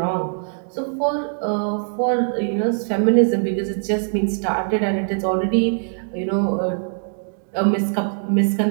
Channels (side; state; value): left; silent; digital silence